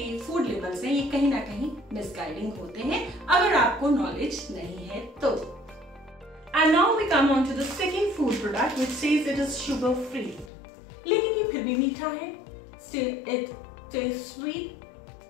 फूड लेबल्स हैं ये कहीं ना कहीं मिसगाइडिंग होते हैं अगर आपको नॉलेज नहीं है तो। And now we come on to the second food product which says it is sugar free, लेकिन ये फिर भी मीठा है। Still it tastes sweet?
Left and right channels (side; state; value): right; drops out; at 10.5 s